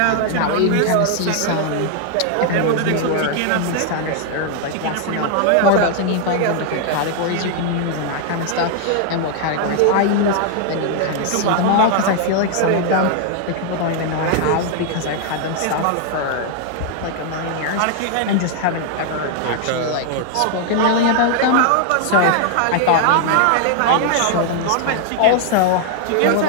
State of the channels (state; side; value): different; both; correlation 0.00